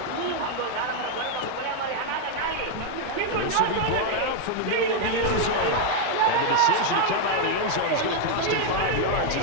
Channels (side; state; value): both; different; correlation 0.00